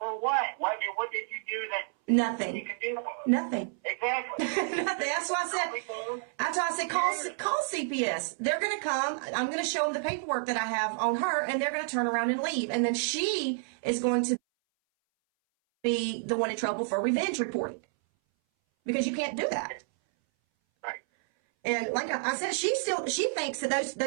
what? What did you do that Nothing. you could do? Nothing. Exactly. Nothing. That's why I said, call CPS. They're going to come. I'm going to show them the paperwork that I have on her, and they're going to turn around and leave. And then she is going to be the one in trouble for revenge reporting, because you can't do that. Right. And like I said, she thinks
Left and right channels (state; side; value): silent; left; 58 dB below the other